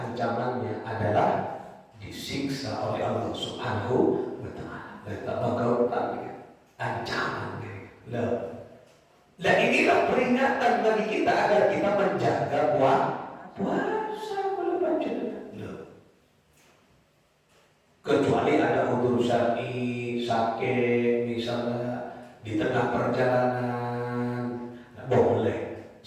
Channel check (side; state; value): both; identical; correlation 1.00